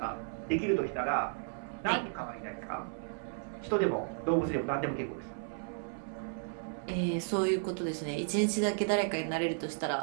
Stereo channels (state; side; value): silent; left; 55 dB below the other